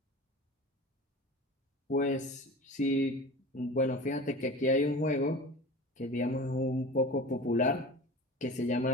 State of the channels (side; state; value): both; normal; correlation 0.35